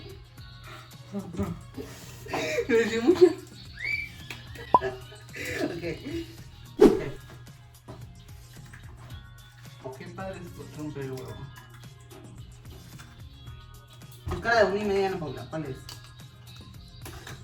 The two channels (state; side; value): identical; both; correlation 1.00